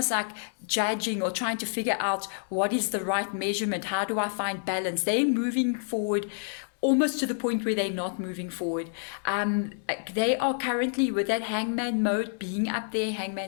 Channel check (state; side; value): silent; right; digital silence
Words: like judging or trying to figure out what is the right measurement. How do I find balance? They're moving forward almost to the point where they're not moving forward. They are currently with that hangman mode being up there.